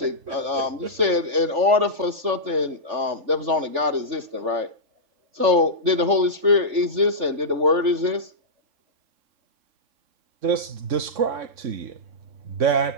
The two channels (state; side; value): late; left; 3.4 ms